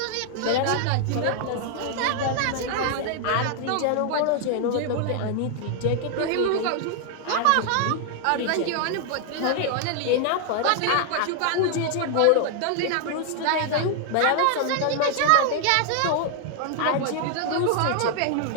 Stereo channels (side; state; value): both; different; correlation 0.00